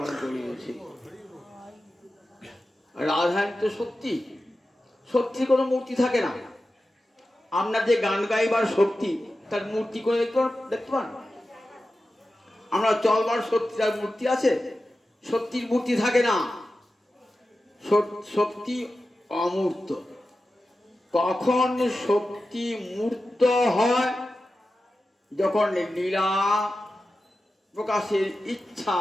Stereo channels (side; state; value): both; normal; correlation 0.93